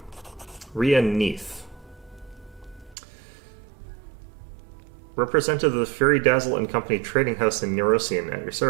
Rhea Neath. Representative of the Fury Dazzle and Company Trading House in Neurosian at your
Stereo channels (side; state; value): left; drops out; at 3.0 s